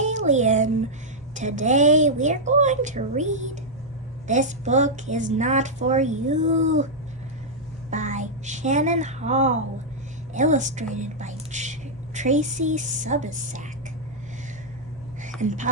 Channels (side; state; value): both; normal; correlation -0.06